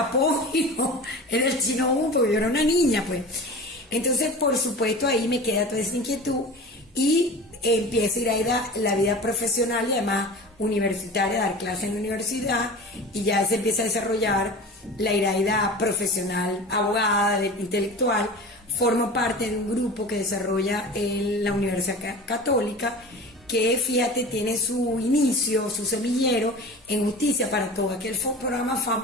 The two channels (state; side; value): normal; both; correlation 0.36